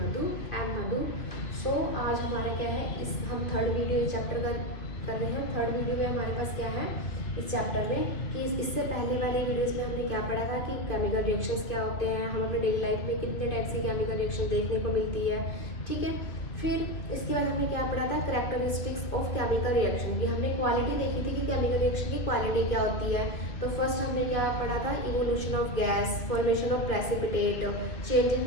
आई एम मधु। सो आज हमारा क्या है, इस हम थर्ड वीडियो चैप्टर का कर रहे हैं। थर्ड वीडियो में हमारे पास क्या है इस चैप्टर में कि इससे पहले वाले वीडियोस में हमने क्या पढ़ा था कि केमिकल रिएक्शंस क्या होते हैं, हम अपने डेली लाइफ में कितने टाइप से केमिकल रिएक्शन देखने को मिलती है। ठीक है, फिर इसके बाद हमने क्या पढ़ा था, कैरेक्टरिस्टिक्स ऑफ केमिकल रिएक्शन की हमने क्वालिटी देखी थी कि केमिकल रिएक्शन की क्वालिटी क्या होती है। तो फर्स्ट हमने क्या पढ़ा था, evolution of gas, formation of precipitate, change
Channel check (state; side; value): late; right; 2.4 ms